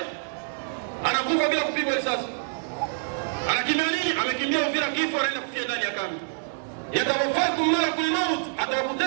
Anakufa bila kupigwa risasi. Anakimbia nini? Amekimbia Uvira, kifo anaenda kufia ndani ya kambi. Yatawaffakum malakul maut,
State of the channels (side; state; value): left; silent; digital silence